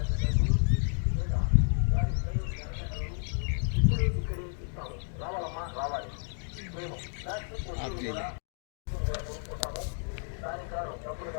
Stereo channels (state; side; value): silent; right; 57 dB below the other